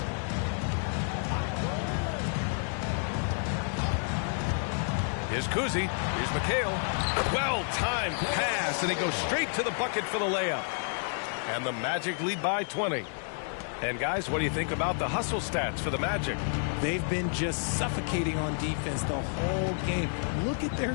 Here's Kuzi. Here's McHale. Well-timed pass, and he goes straight to the bucket for the layup. And the Magic lead by 20. And guys, what do you think about the hustle stats for the Magic? They've been just suffocating on defense the whole game. Look at their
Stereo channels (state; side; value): silent; right; 58 dB below the other